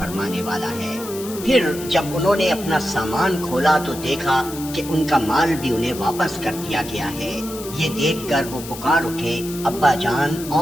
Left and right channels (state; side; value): noise; left; hiss, 12 dB below the sound